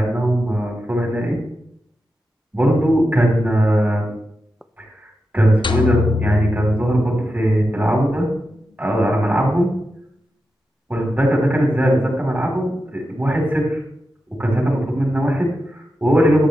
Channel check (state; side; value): normal; both; correlation 0.89